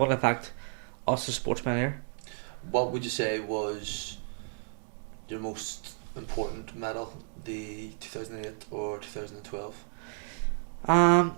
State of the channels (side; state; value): left; silent; 57 dB below the other